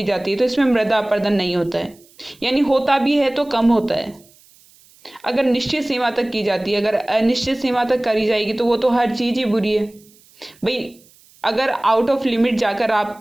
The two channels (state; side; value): noise; right; hiss, 29 dB below the sound